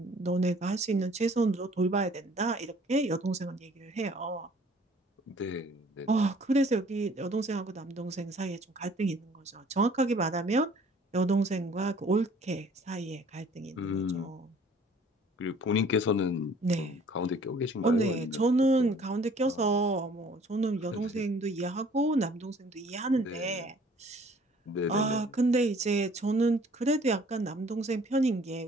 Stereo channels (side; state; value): both; normal; correlation 0.55